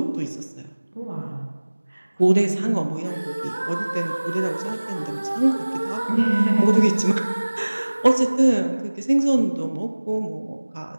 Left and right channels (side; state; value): both; inverted; correlation -1.00